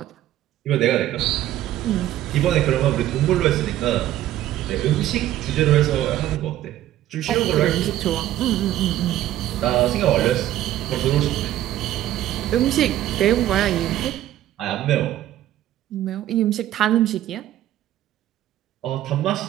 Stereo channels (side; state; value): left; quieter; 13.3 dB